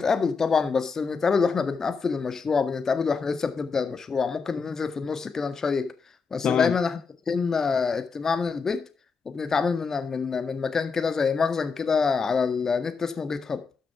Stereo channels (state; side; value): quieter; right; 5.1 dB